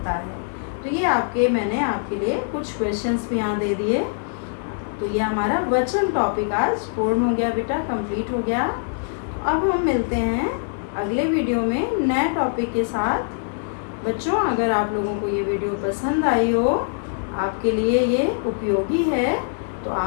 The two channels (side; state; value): right; silent; 63 dB below the other